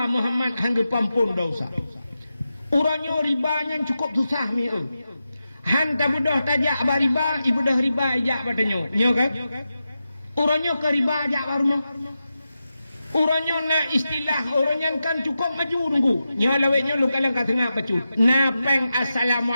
Muhammad hang dipampun dosa. Urangnya ribanya cukup susah ni. Han ta budah tajak ba riba, ibu dah riba ajak badanyo. Nyo kan? Urangnya ke riba ajak baruno. Urangnya nak istilah orangnya kan cukup maju nunggu. Nya laweknya lu kalang kat tengah pacu. Napeng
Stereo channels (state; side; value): inverted; both; correlation -0.90